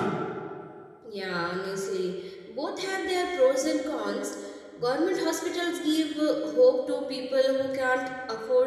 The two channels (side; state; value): both; identical; correlation 1.00